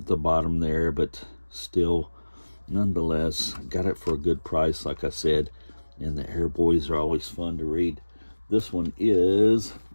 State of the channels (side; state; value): both; inverted; correlation -1.00